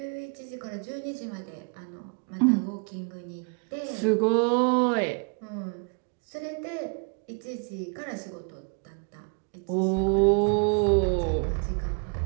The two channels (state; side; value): quieter; left; 37.2 dB